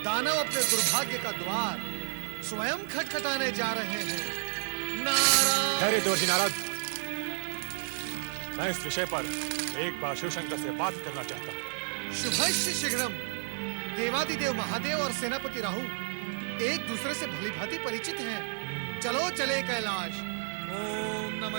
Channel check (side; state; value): left; silent; digital silence